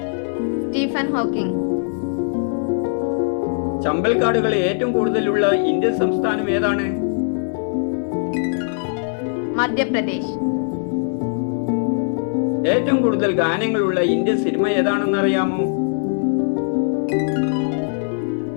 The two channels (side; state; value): right; silent; 55 dB below the other